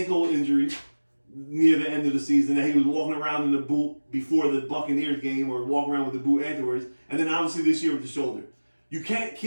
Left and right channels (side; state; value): both; inverted; correlation -1.00